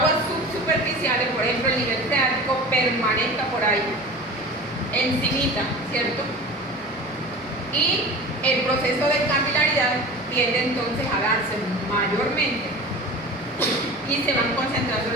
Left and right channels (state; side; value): normal; both; correlation 0.35